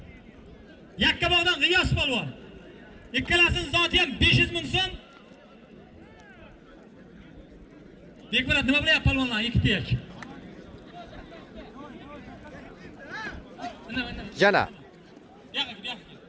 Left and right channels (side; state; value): both; identical; correlation 1.00